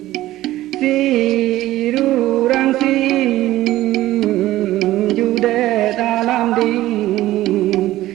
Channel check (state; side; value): quieter; left; 15.5 dB